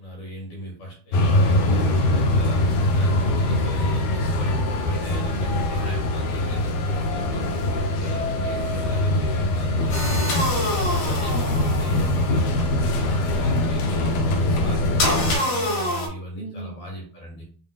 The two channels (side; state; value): right; late; 12 ms